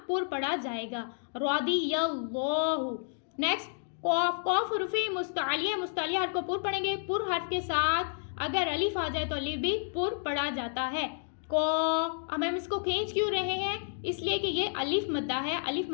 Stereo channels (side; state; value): right; silent; digital silence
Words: پر پڑھا جائے گا. رضی اللہ. نیکسٹ قاف. قاف حروف مستعلیہ حرف کو پر پڑھیں گے. پر حرف کے ساتھ اگر الف آ جائے تو الف بھی پر پڑھا جاتا ہے. اب ہم اس کو کھینچ کیوں رہے ہیں؟ اس لیے کہ یہ الف مدہ ہے. الف